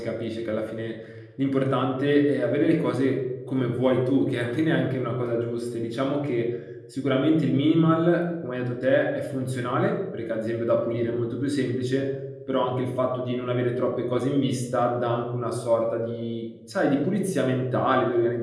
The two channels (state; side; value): identical; both; correlation 1.00